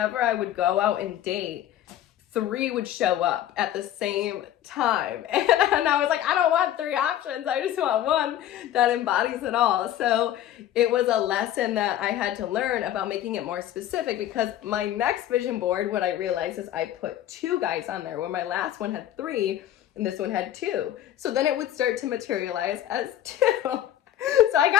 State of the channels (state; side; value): quieter; right; 11.8 dB